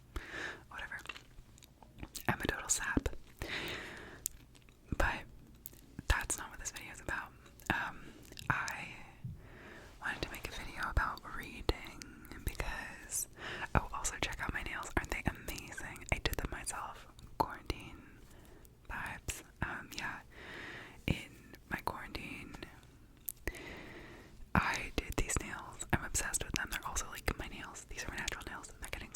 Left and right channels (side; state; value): both; identical; correlation 1.00